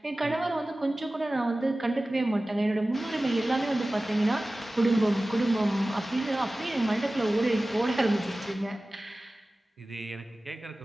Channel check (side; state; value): both; normal; correlation 0.97